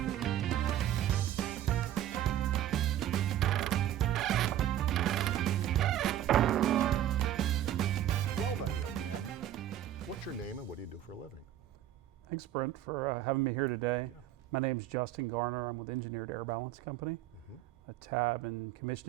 Well then, young man, what's your name and what do you do for a living? Thanks, Brent, for having me here today. Yeah. My name's Justin Garner. I'm with Engineered Air Balance Company, a tab and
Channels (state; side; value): quieter; left; 12.0 dB